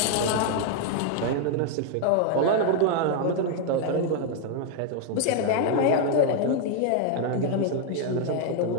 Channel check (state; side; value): different; both; correlation 0.00